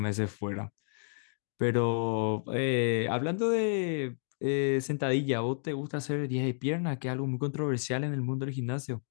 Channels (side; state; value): right; silent; digital silence